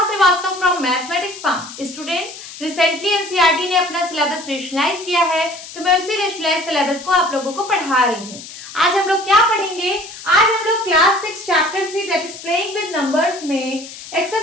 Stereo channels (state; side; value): noise; left; hiss, 14 dB below the sound